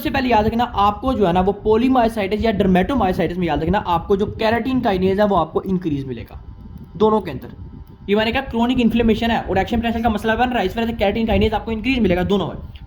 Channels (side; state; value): both; identical; correlation 1.00